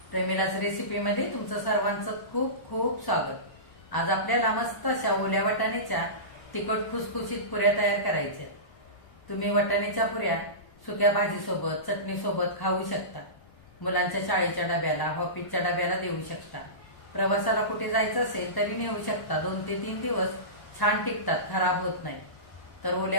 प्रेमिलाच रेसिपीमध्ये तुमचं सर्वांचं खूप खूप स्वागत. आज आपल्याला मस्त अशा ओल्या वाटाण्याच्या तिखट खुसखुशीत पुऱ्या तयार करायच्या. तुम्ही वाटाण्याच्या पुऱ्या सुक्या भाजीसोबत चटणीसोबत खाऊ शकता. मुलांच्या शाळेच्या डब्याला ऑफिसच्या डब्याला देऊ शकता. प्रवासाला कुठे जायचं असेल तरी नेऊ शकता. 2 ते 3 दिवस छान टिकतात, खराब होत नाही. तर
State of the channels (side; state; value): right; late; 1.0 ms